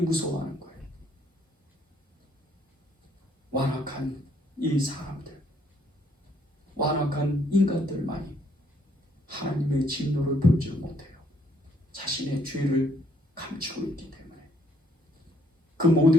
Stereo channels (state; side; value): normal; both; correlation 0.68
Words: 거예요. 완악한 이 사람들, 완악한 인간들만이 하나님의 진노를 보지 못해요. 자신의 죄를 감추고 있기 때문에. 그